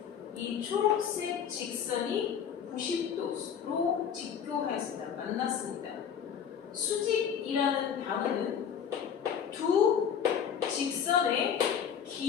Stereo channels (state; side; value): quieter; right; 8.0 dB